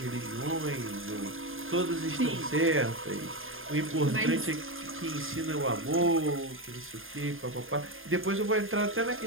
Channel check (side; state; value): left; late; 0.59 ms